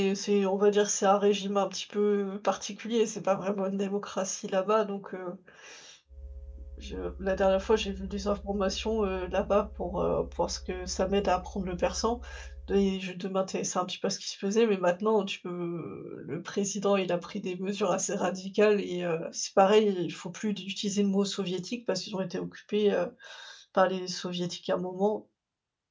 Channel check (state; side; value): identical; both; correlation 1.00